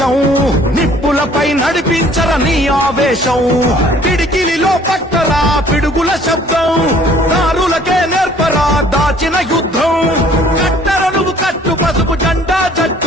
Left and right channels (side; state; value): both; normal; correlation 0.56